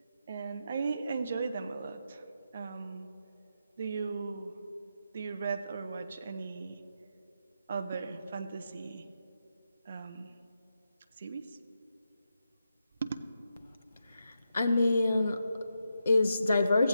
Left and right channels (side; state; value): both; inverted; correlation -0.86